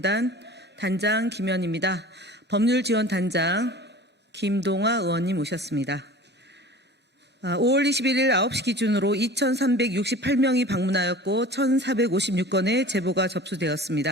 단장 김현입니다. 법률지원단장 김동아 의원님 오셨습니다. 5월 21일 9시 기준으로 2,368명이 방문하였고 1,456건의 제보가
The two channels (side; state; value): both; normal; correlation 0.40